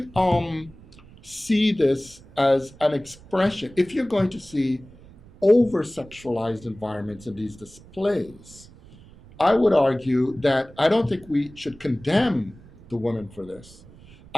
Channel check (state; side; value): noise; right; rumble, 22 dB below the sound